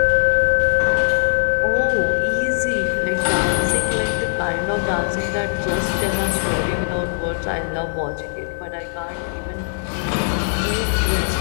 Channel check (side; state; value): right; silent; digital silence